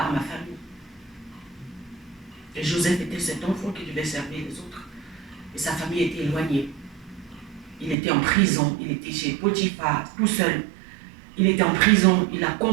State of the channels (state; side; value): drops out; left; at 8.0 s